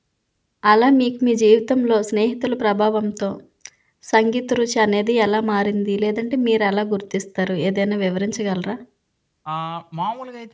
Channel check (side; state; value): both; identical; correlation 1.00